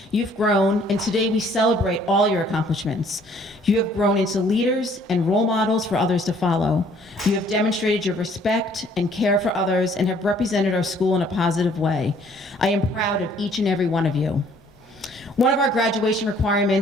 you've grown, and today we celebrate all your accomplishments. You have grown into leaders and role models for others to follow. You have demonstrated your respect and care for others and have represented our school in a positive way. I am proud of each and every one of you. One of our graduation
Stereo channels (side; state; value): both; normal; correlation 0.60